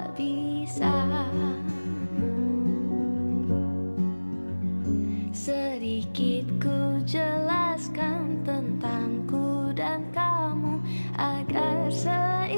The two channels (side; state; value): both; inverted; correlation -1.00